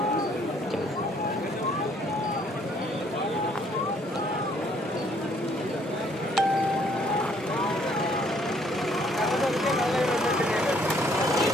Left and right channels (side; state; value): both; normal; correlation 0.64